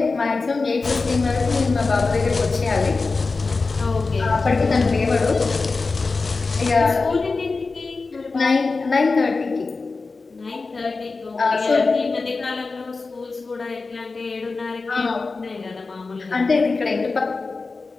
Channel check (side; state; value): right; quieter; 4.0 dB